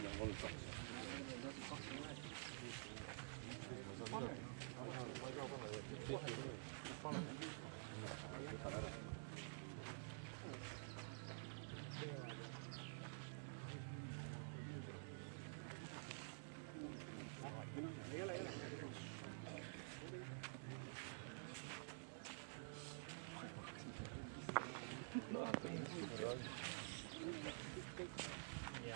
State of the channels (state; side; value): silent; left; digital silence